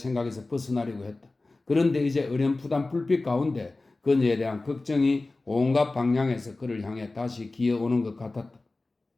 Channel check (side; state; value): right; quieter; 3.2 dB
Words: 벗어나려고 했다. 그런데 이제 어렴풋한 불빛 가운데 그녀에 대한 걱정이 온갖 방향에서 그를 향해 다시 기어오는 것 같았다.